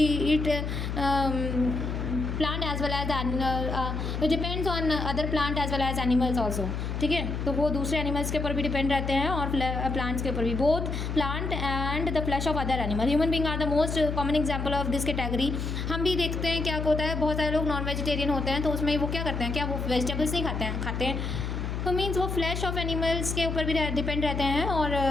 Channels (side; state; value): left; noise; hum, 3 dB below the sound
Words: plant as well as depends on other plant as well as animals also, ठीक है। तो वो दूसरे एनिमल्स के ऊपर भी डिपेंड रहते हैं और प्लांट्स के ऊपर भी, both plant and the flesh of other animal. Human being are the most common example of this category. हम भी देखते हैं क्या होता है, बहुत सारे लोग नॉन वेजिटेरियन होते हैं, तो उसमें वो क्या करते हैं, क्या वो वेजिटेबल्स नहीं खाते हैं। तो मीन्स वो फ्लैश ऑफ एनिमल्स के ऊपर भी डिपेंड रहते हैं, और